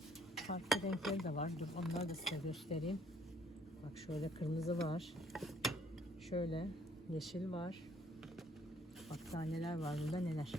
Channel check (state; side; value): normal; both; correlation 0.62